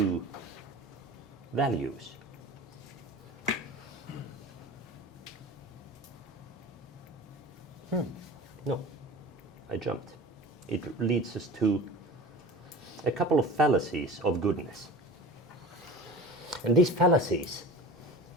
values. No, I jumped. It leads us to a couple of fallacies of goodness. And these fallacies,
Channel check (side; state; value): both; normal; correlation 0.36